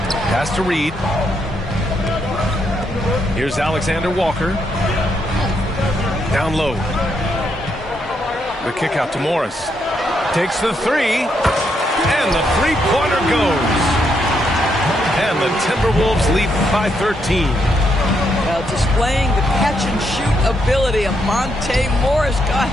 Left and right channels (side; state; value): both; normal; correlation 0.78